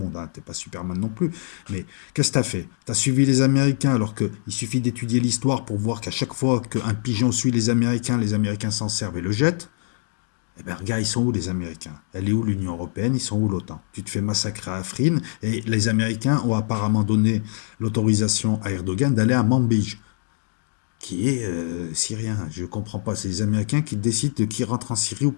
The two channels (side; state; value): right; silent; digital silence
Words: Hein. T'es pas Superman non plus. Mais qu'est-ce que t'as fait? T'as suivi les Américains, alors qu'il suffit d'étudier l'histoire pour voir qu'à chaque fois qu'un pigeon suit les Américains s'en servent et le jettent. Eh bien, regarde, ils sont où les Américains? Elle est où l'Union Européenne? Ils sont où l'OTAN? Tu te fais massacrer à Afrin, et les Américains ont apparemment donné l'autorisation à Erdogan d'aller à Manbij, qui est syrien. Je ne comprends pas. C'est les Américains qui décident de qui rentre en Syrie ou